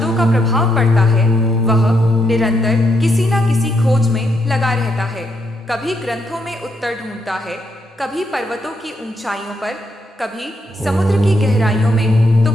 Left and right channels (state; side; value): normal; both; correlation 0.77